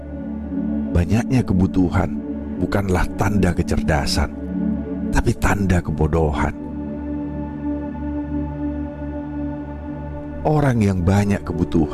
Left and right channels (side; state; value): both; identical; correlation 1.00